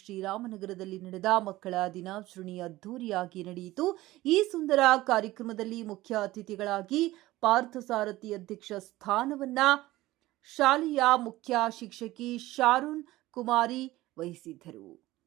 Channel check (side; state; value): left; quieter; 17.4 dB